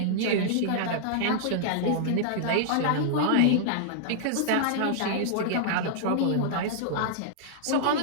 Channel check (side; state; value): both; different; correlation -0.01